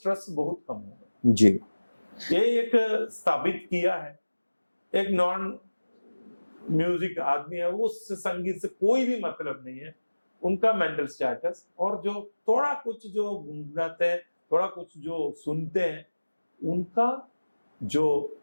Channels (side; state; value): both; inverted; correlation -1.00